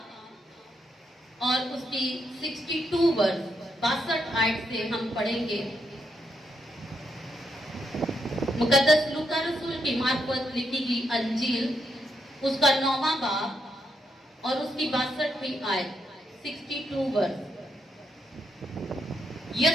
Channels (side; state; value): both; normal; correlation 0.80